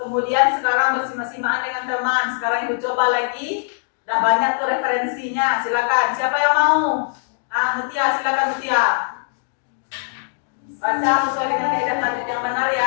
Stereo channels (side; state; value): right; silent; digital silence